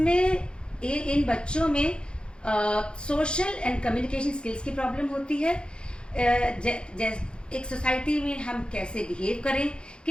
इन बच्चों में सोशल एंड कम्युनिकेशन स्किल्स की प्रॉब्लम होती है। एक सोसाइटी में हम कैसे बिहेव करें,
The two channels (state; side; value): late; right; 0.053 ms